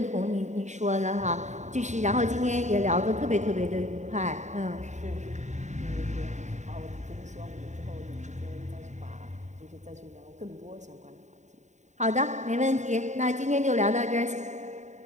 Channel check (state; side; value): late; left; 0.34 ms